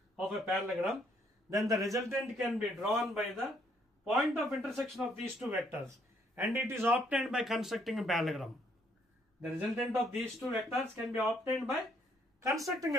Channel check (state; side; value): normal; both; correlation 0.69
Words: of a parallelogram, then the resultant can be drawn by the point of intersection of these two vectors, and it is obtained by constructing a parallelogram. The resultant of these two vectors can be obtained by constructing